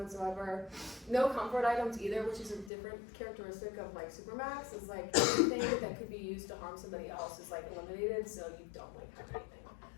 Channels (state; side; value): drops out; right; at 2.7 s